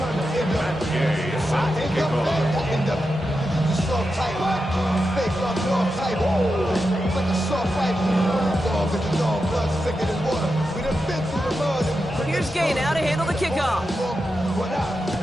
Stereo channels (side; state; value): both; normal; correlation 0.89